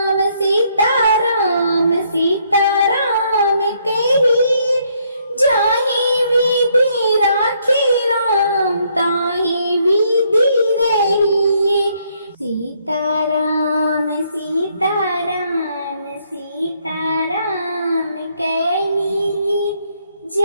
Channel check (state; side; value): inverted; both; correlation -0.70